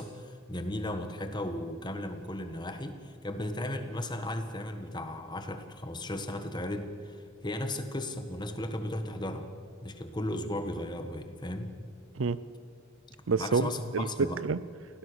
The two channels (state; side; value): normal; both; correlation 0.41